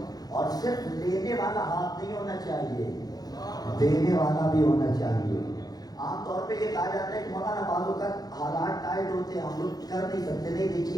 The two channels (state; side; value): late; right; 0.19 ms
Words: اور صرف لینے والا ہاتھ نہیں ہونا چاہیے, دینے والا بھی ہونا چاہیے. عام طور پہ یہ کہا جاتا ہے کہ مولانا بعضوں کا حالات ٹائٹ ہوتے ہیں, ہم لوگ کر نہیں سکتے. نہیں,